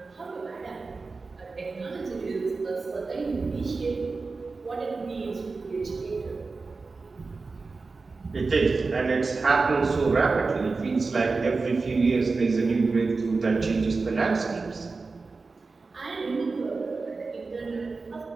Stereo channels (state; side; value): quieter; left; 4.0 dB